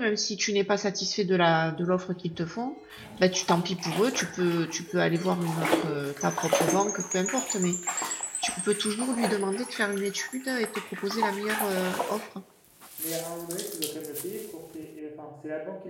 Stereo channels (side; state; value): both; identical; correlation 1.00